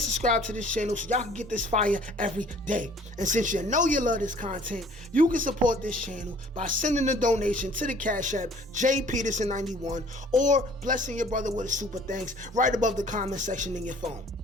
subscribe to this channel so y'all can get this fire every day. And since you know you love this content, you can support this channel by sending a donation to the Cash App JPeterson91 or blessing your brother with a super thanks right above the comment section in your phone.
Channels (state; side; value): normal; both; correlation 0.54